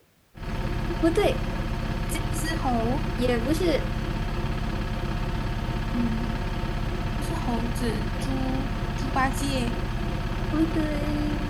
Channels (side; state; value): both; identical; correlation 1.00